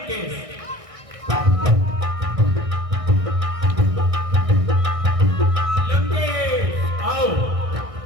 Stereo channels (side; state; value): left; late; 1.6 ms